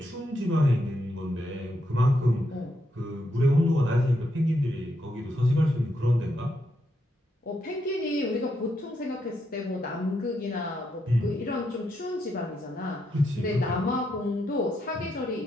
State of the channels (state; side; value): normal; both; correlation 0.80